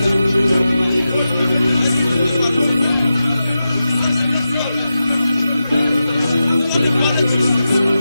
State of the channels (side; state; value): both; inverted; correlation -0.91